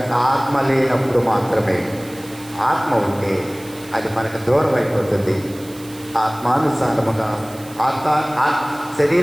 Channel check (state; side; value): noise; right; hiss, 20 dB below the sound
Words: ఆత్మ లేనప్పుడు మాత్రమే. ఆత్మ ఉంటే అది మనకు దూరం అయిపోతుంది. ఆత్మానుసారముగా